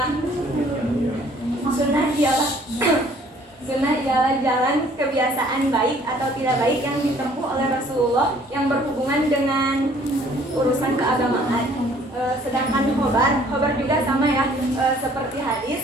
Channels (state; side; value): normal; both; correlation 0.58